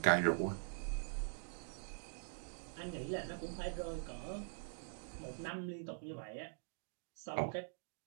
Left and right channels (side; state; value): left; silent; digital silence